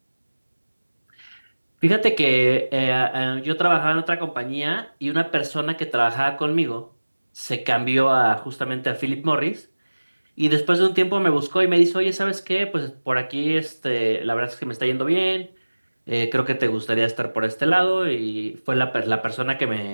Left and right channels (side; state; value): both; inverted; correlation -1.00